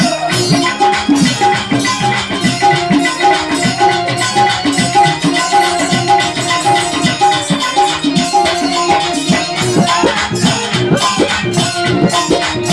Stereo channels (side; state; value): left; noise; hum, 29 dB below the sound